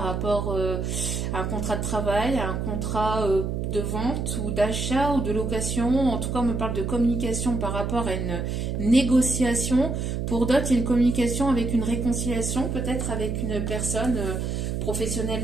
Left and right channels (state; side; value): noise; right; hum, 2 dB below the sound